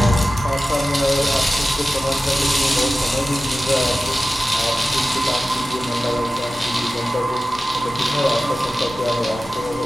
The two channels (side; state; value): both; normal; correlation 0.95